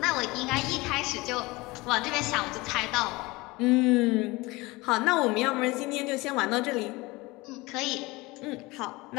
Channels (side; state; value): right; quieter; 22.5 dB